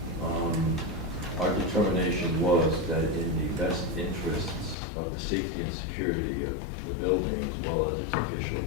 our determination was that in the best interests of the safety and security of the building as well as its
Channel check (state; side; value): drops out; right; at 4.8 s